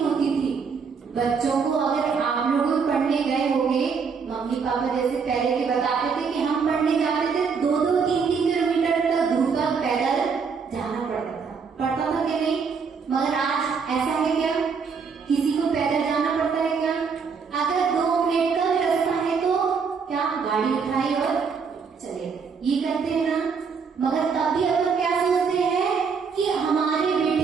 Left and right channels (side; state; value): left; quieter; 5.7 dB